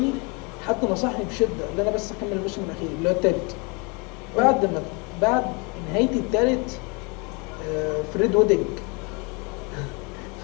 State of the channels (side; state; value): right; quieter; 30.9 dB